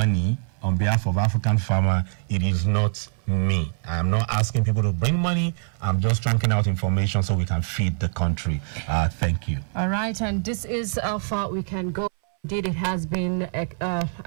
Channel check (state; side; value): silent; left; 60 dB below the other